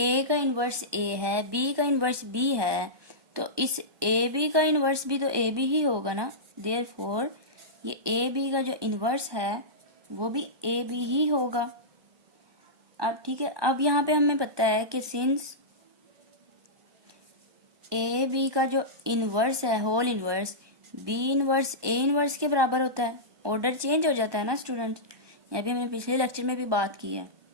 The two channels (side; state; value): left; late; 1.2 ms